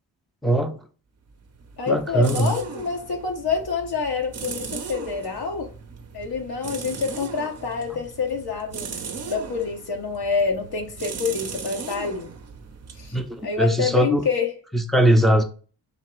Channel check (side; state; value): both; normal; correlation 0.34